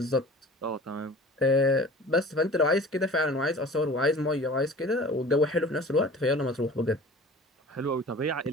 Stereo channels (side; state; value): both; normal; correlation 0.42